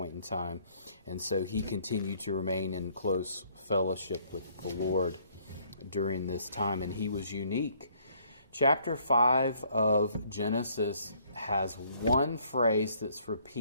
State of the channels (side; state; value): both; inverted; correlation -0.64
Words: in time. And so he continued to remain in close fellowship with the Lord during this time. And he was unique. Chapter 5 of Genesis has one phrase that's